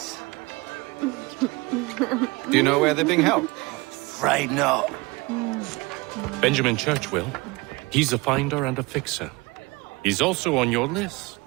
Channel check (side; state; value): left; quieter; 24.4 dB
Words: Do you know where they're being held? Afraid not. Benjamin Church will. He's a finder and a fixer. He's also on your list.